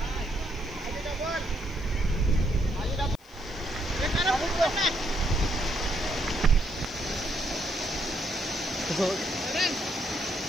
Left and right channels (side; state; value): left; noise; hiss, 29 dB below the sound